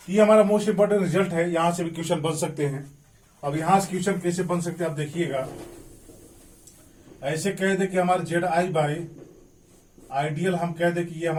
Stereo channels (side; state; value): both; identical; correlation 1.00